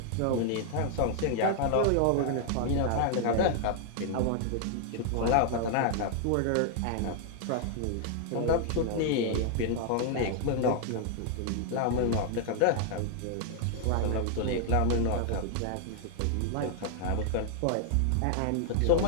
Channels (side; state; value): both; different; correlation 0.00